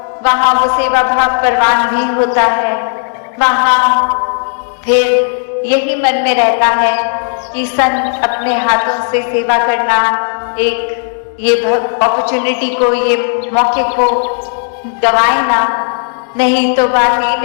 वहाँ वो सेवा भाव परवान भी होता है। वहाँ फिर यही मन में रहता है कि संत अपने हाथों से सेवा करना, एक ये अपॉर्चुनिटी को, ये मौके को गवाए ना। नहीं तो बात ये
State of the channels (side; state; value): right; silent; 71 dB below the other